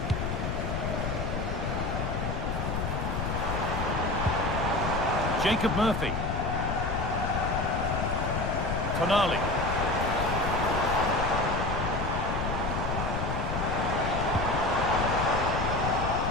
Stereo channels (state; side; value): noise; left; rumble, 2 dB below the sound